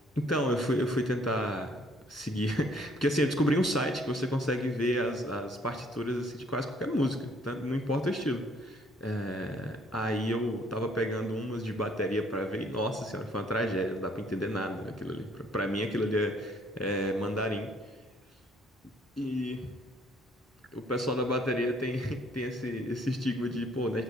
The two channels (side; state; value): both; normal; correlation 0.63